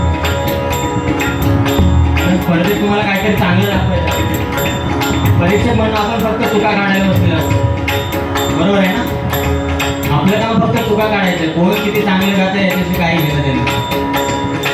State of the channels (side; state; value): both; identical; correlation 1.00